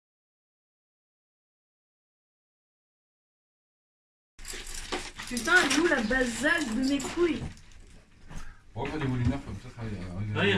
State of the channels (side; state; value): both; identical; correlation 1.00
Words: Putain, elle est où la basale de mes couilles? On va faire des volumères comme ça. Ouais, il y